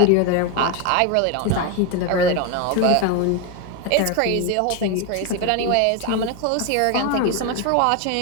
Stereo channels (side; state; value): both; different; correlation 0.02